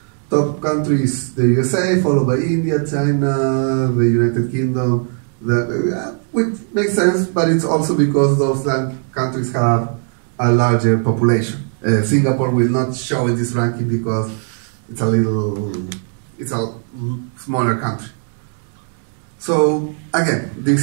Top countries, the USA, followed by India, China, the United Kingdom, which makes sense, but it's also because those countries have a larger population. Singapore will not show in this ranking because it's a smaller country. So again,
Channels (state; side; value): silent; left; 56 dB below the other